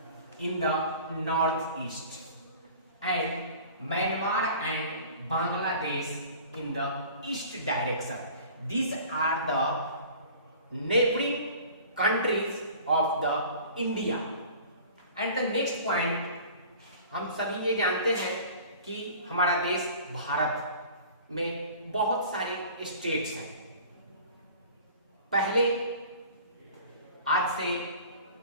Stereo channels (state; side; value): inverted; both; correlation -0.44